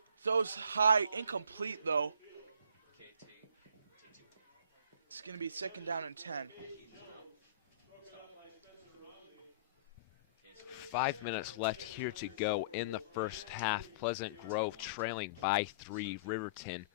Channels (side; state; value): both; inverted; correlation -0.46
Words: Throws high, incomplete though. It's going to be 2nd down and 10. 5 minutes left here to go in the first half. Pleasant Grove trailing by 3. Riverton